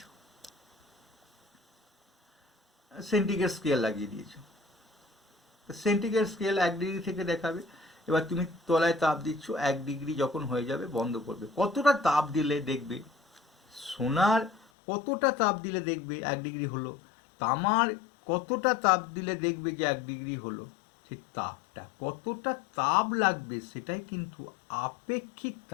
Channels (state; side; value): drops out; right; at 14.7 s